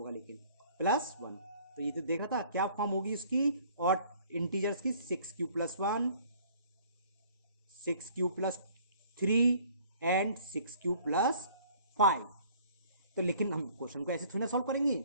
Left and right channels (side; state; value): both; inverted; correlation -0.55